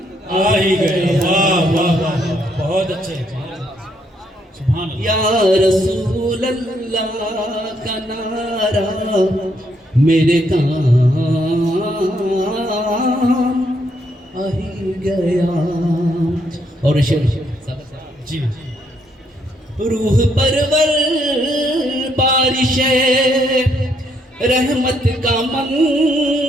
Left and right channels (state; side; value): normal; both; correlation 0.73